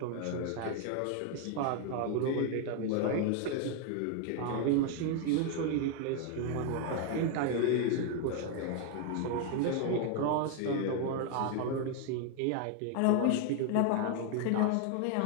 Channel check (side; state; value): both; different; correlation 0.00